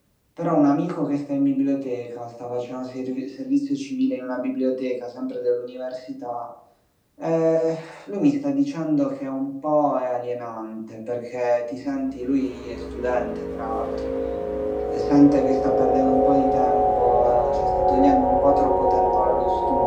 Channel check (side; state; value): both; identical; correlation 1.00